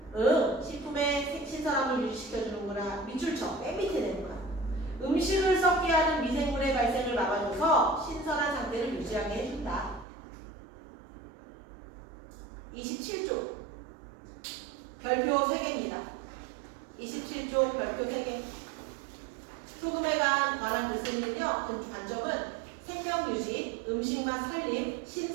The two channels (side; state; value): left; drops out; at 10.1 s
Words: 식품의 신선함을 유지시켜주는구나. 밑줄 쳐. 맨 밑에 내는 거야. 음식을 썩게 하는 미생물의 발생을 막아줘서 신선한 상태를 유지하게 해준다. 27쪽. 별표 3개입니다. 27쪽 별표 3개. 소금에 관한 글쓰기는요. 그 관점은 생명 유지, 음식맛 살림,